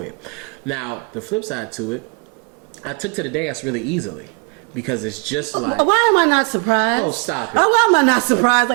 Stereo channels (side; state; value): left; quieter; 33.6 dB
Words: it. Now, the flip side to it, I took to the dance really easily. Because it's just like... Why am I not surprised? Oh, stop it. Why am I not surprised?